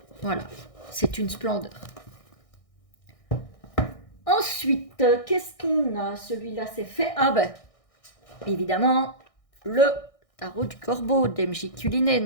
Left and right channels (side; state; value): right; late; 1.6 ms